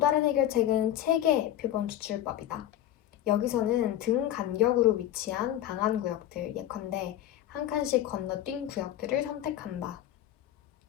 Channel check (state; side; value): quieter; right; 12.3 dB